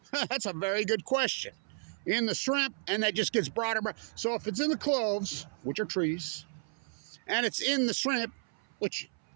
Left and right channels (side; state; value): left; silent; 56 dB below the other